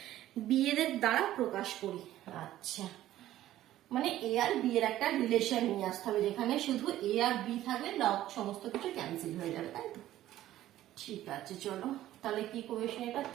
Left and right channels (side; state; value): left; quieter; 13.8 dB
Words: এর দ্বারা প্রকাশ করি। আচ্ছা, মানে a আর b এর একটা রিলেশন নিয়ে আসতে হবে, যেখানে শুধু a আর b থাকলে লগ সমস্ত কিছু ক্যান্সেল হয়ে যাবে, তাই তো, ঠিক আছে। চলো তাহলে কি কোয়েশ্চেন, এটা